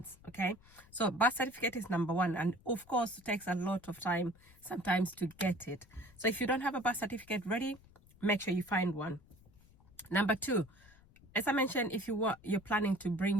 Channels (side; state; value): left; noise; rumble, 26 dB below the sound